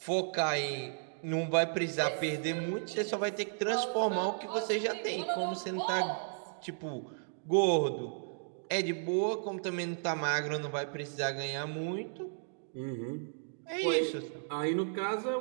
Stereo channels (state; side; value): silent; left; digital silence